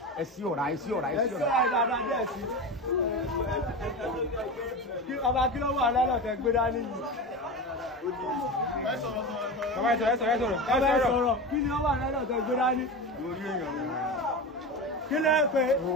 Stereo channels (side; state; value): both; normal; correlation 0.24